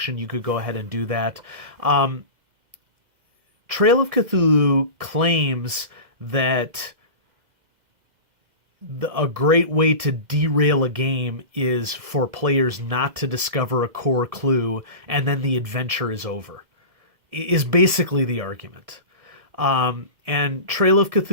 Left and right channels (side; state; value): left; late; 2.0 ms